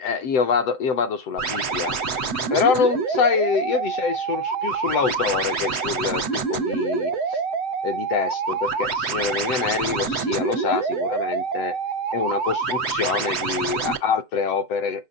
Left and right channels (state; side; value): late; right; 7.9 ms